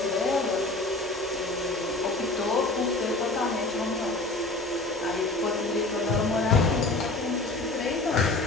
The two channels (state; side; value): quieter; right; 3.1 dB